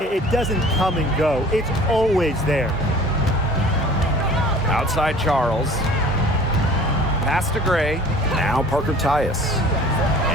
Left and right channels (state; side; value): normal; both; correlation 0.47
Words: doesn't come and go. It's always there. Outside Charles. Pass to Gray. Now Parker Tyus.